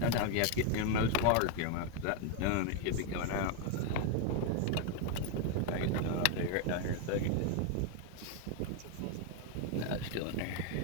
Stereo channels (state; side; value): different; both; correlation 0.01